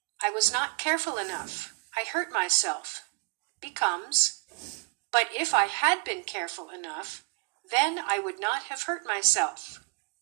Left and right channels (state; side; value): quieter; left; 35.3 dB